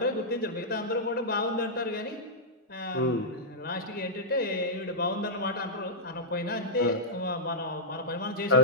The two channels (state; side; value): normal; both; correlation -0.11